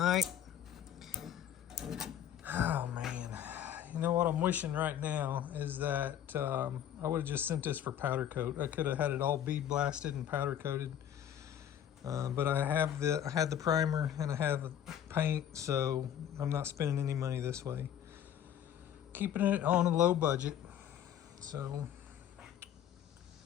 Oh man, you know what I'm wishing right now is that I would have just sent this for powder coat. I could have had it all bead blasted and powder coated, but I had the primer and I have the paint, so I'm not spending any money this way. Keeping it on a low budget. So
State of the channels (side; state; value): right; quieter; 10.1 dB